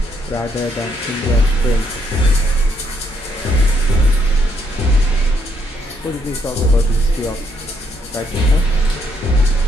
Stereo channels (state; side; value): normal; both; correlation 0.73